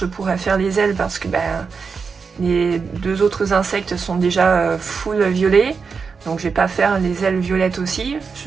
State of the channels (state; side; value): quieter; left; 5.4 dB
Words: pourrais faire les ailes parce que les deux autres insectes sont déjà full violet. Donc je vais pas faire les ailes violettes aussi.